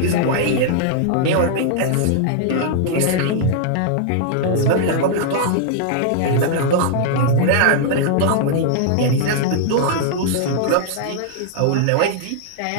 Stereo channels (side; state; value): both; different; correlation -0.01